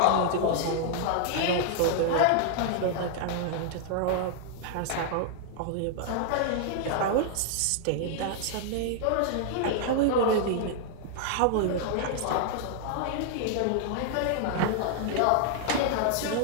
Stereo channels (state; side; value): different; both; correlation -0.01